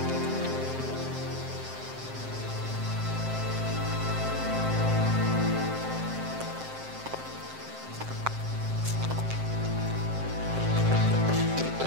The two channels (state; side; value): late; left; 7.6 ms